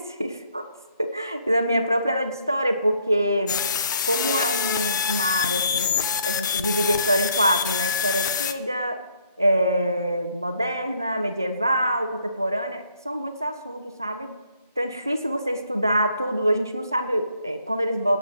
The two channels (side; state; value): both; inverted; correlation -0.67